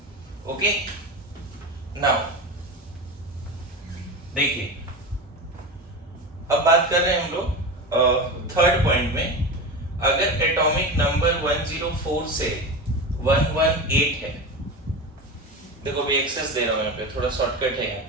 ओके, नाउ देखिए, अब बात कर रहे हैं हम लोग थर्ड पॉइंट में। अगर एटॉमिक नंबर 104 से 118 है, देखो भी एक्सेस दे रहा हूं यहाँ पे, थोड़ा शॉर्टकट है यहाँ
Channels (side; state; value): both; normal; correlation 0.24